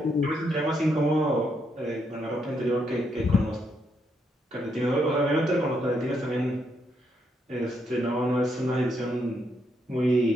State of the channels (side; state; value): both; normal; correlation 0.77